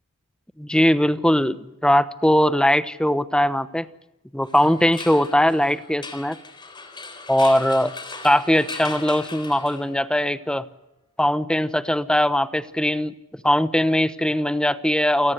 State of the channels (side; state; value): both; normal; correlation 0.93